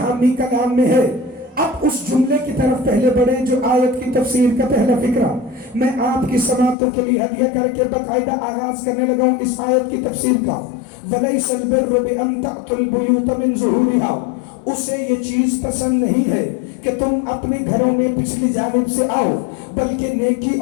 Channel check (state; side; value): drops out; right; at 6.8 s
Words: کلام میں ہے۔ اب اس جملے کی طرف پہلے بڑھیں جو آیت کی تفسیر کا پہلا فقرہ میں آپ کی سماعتوں کے لیے ہدیہ کر کے باقاعدہ آغاز کرنے لگا ہوں اس آیت کی تفسیر کا۔ وَلَيْسَ الْبِرُّ بِأَن تَأْتُوا الْبُيُوتَ مِن ظُهُورِهَا، اسے یہ چیز پسند نہیں ہے کہ تم اپنے گھروں میں پچھلی جانب سے آؤ، بلکہ نیکی